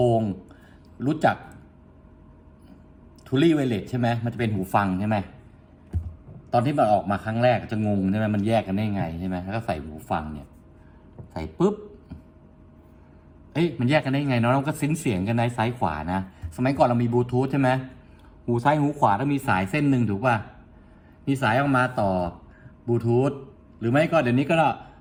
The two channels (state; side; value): identical; both; correlation 1.00